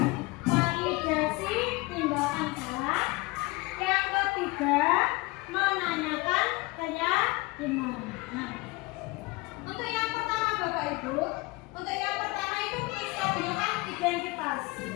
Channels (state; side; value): quieter; right; 23.6 dB